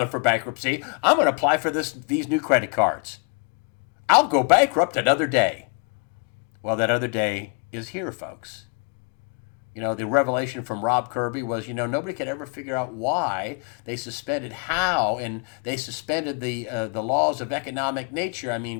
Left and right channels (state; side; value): quieter; right; 34.2 dB